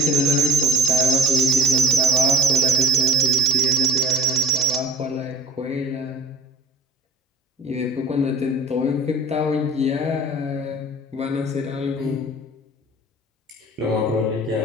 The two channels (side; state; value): both; normal; correlation 0.43